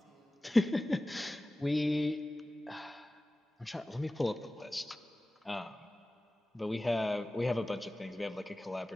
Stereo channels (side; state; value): both; normal; correlation 0.97